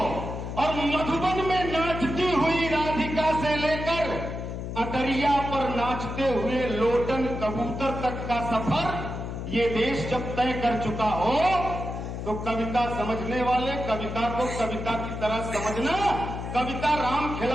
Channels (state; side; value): noise; left; hum, 6 dB below the sound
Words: और मधुबन में नाचती हुई राधिका से लेकर अटरिया पर नाचते हुए लोटन कबूतर तक का सफर ये देश जब तय कर चुका हो, तो कविता समझने वाले कविता को कविता की तरह समझना। कविता राम